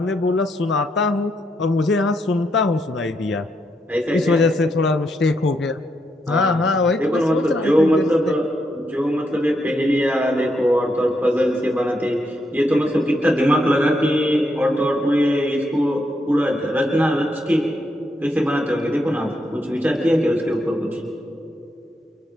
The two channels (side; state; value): both; normal; correlation 0.79